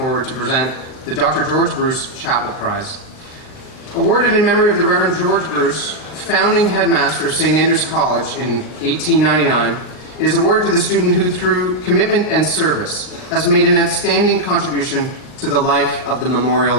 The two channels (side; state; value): right; late; 39 ms